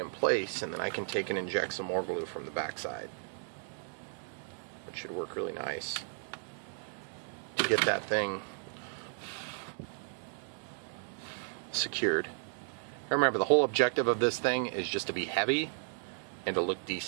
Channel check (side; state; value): left; silent; digital silence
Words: place, and then I can take and inject some more glue from the backside, which should work really nice to get that thing secured. Remember, the whole objective of this thing is just to be heavy and to look